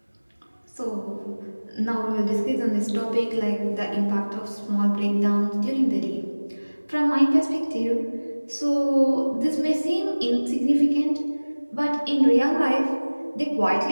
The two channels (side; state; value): both; inverted; correlation -1.00